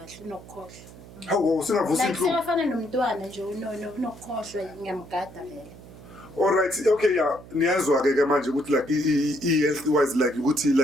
unokukhohlwa. Hawu singavusi Like inhlungu. siyafana nomntwana nje unokukhohlwa ngiyamgada vele. All right, okay, yeah. Niyazwa ke manje ukuthi like health wise like ukuthi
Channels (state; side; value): noise; right; hum, 18 dB below the sound